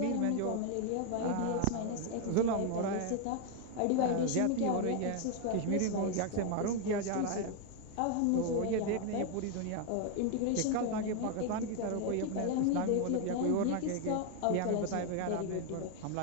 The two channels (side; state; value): both; different; correlation 0.01